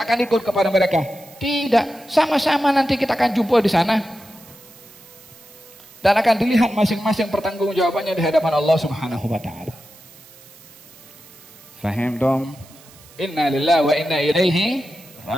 akan ikut kepada mereka. Tidak, sama-sama nanti kita akan jumpa di sana. Dan akan dilihat masing-masing pertanggungjawabannya di hadapan Allah Subhanahu wa taala. Fahim dong? Inna lillahi wa inna ilaihi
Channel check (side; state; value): right; noise; hiss, 23 dB below the sound